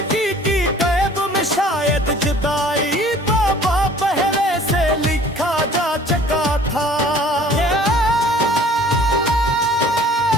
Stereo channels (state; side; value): normal; both; correlation 0.51